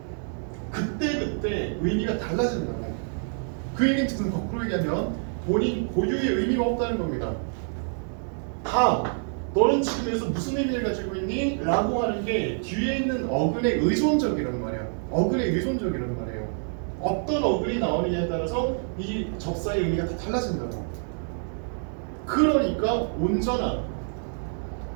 그때 의미가 달라진다고. 그 얘기는 거꾸로 얘기하면 본인 고유의 의미가 없다는 겁니다. 다 너는 지금 여기서 무슨 의미를 가지고 있니? 라고 하는 게 뒤에 있는 어근에 의존적이라는 말이야. 어근에 의존적이라는 말이에요. 어떤 어근이 나오느냐에 따라서 이 접사의 의미가 다 달라진다고. 그러니까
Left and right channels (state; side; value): silent; left; 60 dB below the other